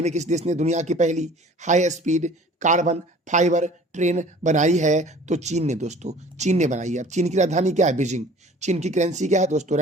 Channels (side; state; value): both; normal; correlation 0.48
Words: में किस देश ने दुनिया की पहली high speed carbon fibre train बनाई है? तो चीन ने दोस्तों, चीन ने बनाई है। चीन की राजधानी क्या है? बीजिंग। चीन की करेंसी क्या है दोस्तों?